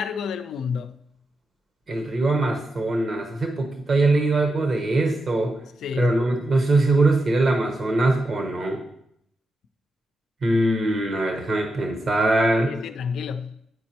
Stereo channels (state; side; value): normal; both; correlation 0.87